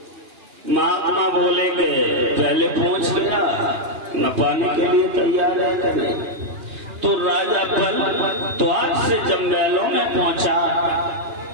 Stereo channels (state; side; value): late; left; 2.9 ms